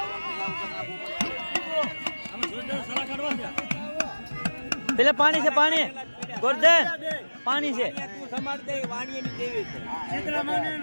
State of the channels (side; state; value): both; inverted; correlation -1.00